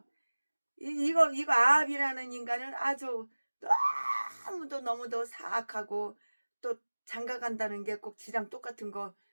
이거 아합이라는 인간은 아주 너무도 사악하고, 또 장가 간다는 게 꼭 지랑 똑같은 거,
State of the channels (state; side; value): inverted; both; correlation -1.00